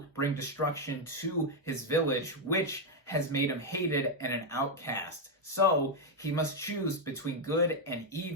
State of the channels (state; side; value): normal; both; correlation 0.02